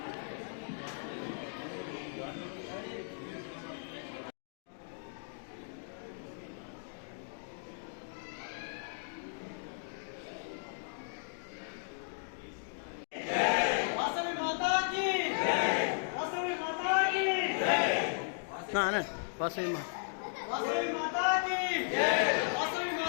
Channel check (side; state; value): right; silent; digital silence